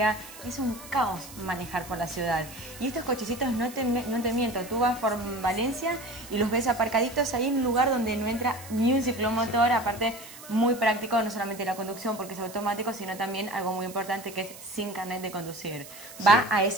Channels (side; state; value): right; noise; hiss, 16 dB below the sound